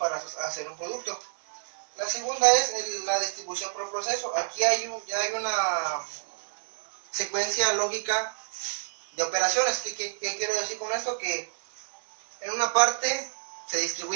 hacer un producto. La segunda es la distribución por proceso. Aquí ya hay una secuencia lógica de operaciones. ¿Qué quiero decir con esto? Que en una parte se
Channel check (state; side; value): silent; left; 59 dB below the other